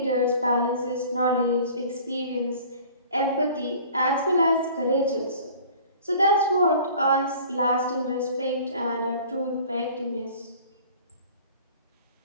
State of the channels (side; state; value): both; inverted; correlation -0.47